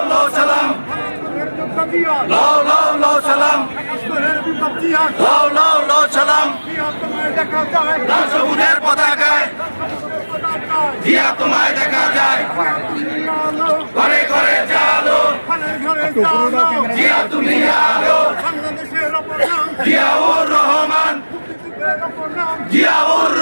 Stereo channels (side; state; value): both; inverted; correlation -1.00